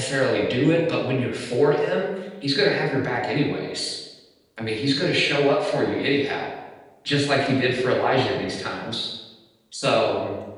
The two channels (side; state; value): both; identical; correlation 1.00